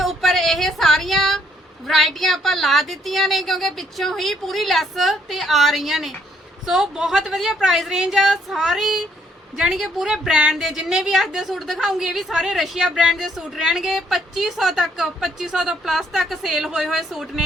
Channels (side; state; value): both; normal; correlation 0.68